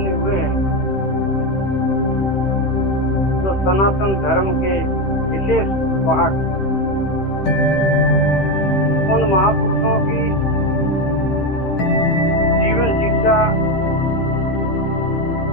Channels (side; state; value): right; late; 15 ms